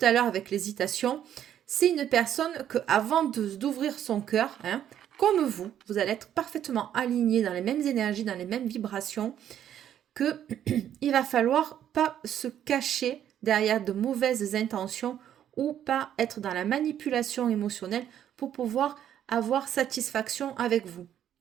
à l'heure avec l'hésitation. C'est une personne que, avant d'ouvrir son cœur, hein, comme vous allez être parfaitement aligné dans les mêmes énergies, dans les mêmes vibrations. que il va falloir pas se cacher derrière de mauvaises intentions ou pas être dans la manipulation émotionnelle pour pouvoir avoir satisfaction avec vous.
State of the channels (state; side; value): quieter; left; 10.3 dB